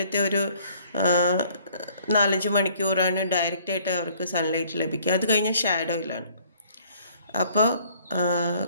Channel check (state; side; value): inverted; both; correlation -0.59